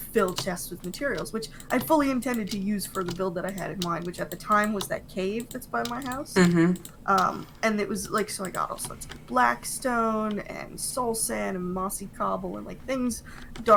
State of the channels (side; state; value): both; identical; correlation 1.00